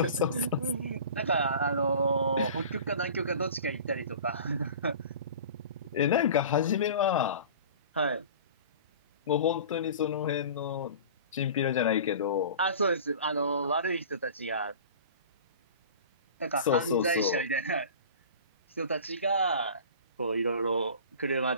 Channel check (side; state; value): both; inverted; correlation -0.40